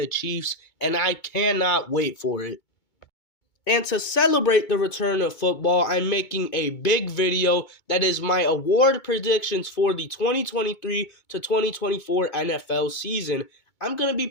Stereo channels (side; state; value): right; late; 2.2 ms